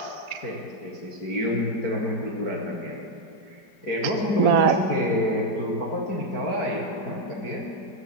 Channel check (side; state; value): right; late; 4.9 ms